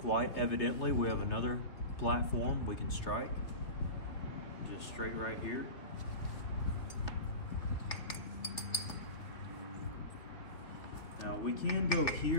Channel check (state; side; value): late; right; 3.2 ms